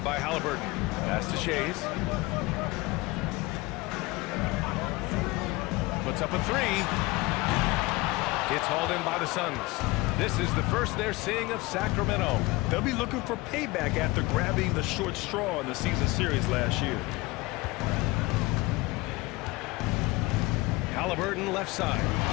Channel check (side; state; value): right; quieter; 22.1 dB